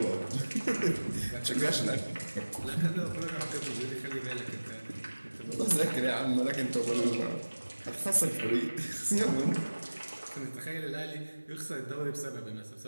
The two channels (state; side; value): inverted; both; correlation -1.00